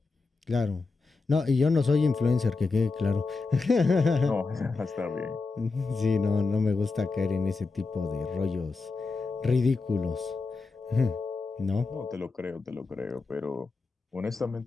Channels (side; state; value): right; quieter; 4.0 dB